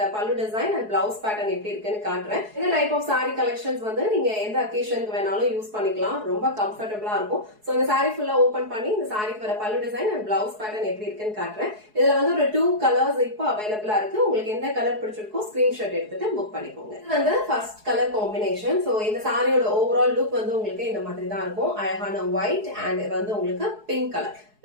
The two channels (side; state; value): left; late; 4.7 ms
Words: பல்லு டிசைன் அண்ட் பிளவுஸ் பேட்டர்ன் எப்படி இருக்குன்னு காட்டுறேன். இந்த டைப் ஆஃப் saree கலெக்ஷன்ஸ் வந்து நீங்க எந்த அக்கேஷனுக்கு வேணாலும் யூஸ் பண்ணிக்கலாம். ரொம்ப கம்ஃபர்ட்டபிளா இருக்கும். சோ இந்த saree ஃபுல்லா ஓபன் பண்ணி இந்த சாரிக்கு வர பல்லு டிசைன் அண்ட் பிளவுஸ் பேட்டர்ன் எப்படி இருக்குன்னு காட்டுறேன். இதுல வந்து ஒரு 2 கலர்ஸ் இப்போ அவைலபிளா இருக்கு. உங்களுக்கு எந்த கலர் பிடிச்சிருக்கோ ஸ்கிரீன்ஷாட் எடுத்துட்டு புக் பண்ணிக்கோங்க. இது வந்து ஃபர்ஸ்ட் கலர் காம்பினேஷன். சோ இந்த சாரியோட ஓவரால் லுக் வந்து உங்களுக்கு இந்த மாதிரி தான் இருக்கும். அழகான ஒயிட் அண்ட் வந்து உங்களுக்கு பிங்க் கலர்